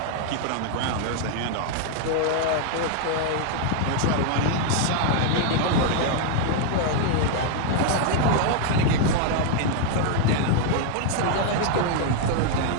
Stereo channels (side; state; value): both; different; correlation 0.00